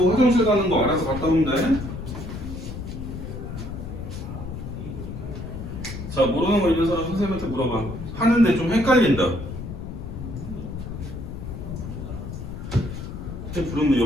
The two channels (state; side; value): noise; left; rumble, 8 dB below the sound